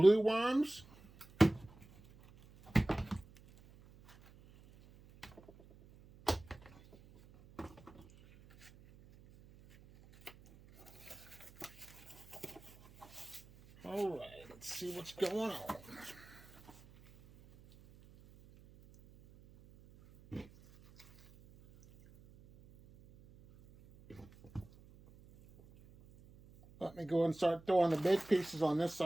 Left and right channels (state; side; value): noise; right; hum, 23 dB below the sound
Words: worms. All right, let's see what's going on. Let me go ahead and start throwing the big pieces on this